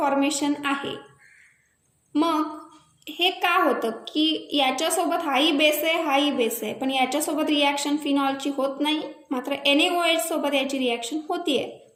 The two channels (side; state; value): both; identical; correlation 1.00